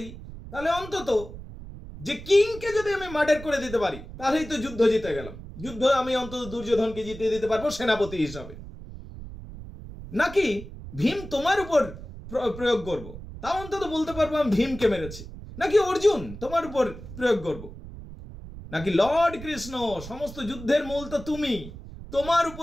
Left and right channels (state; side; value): noise; right; rumble, 13 dB below the sound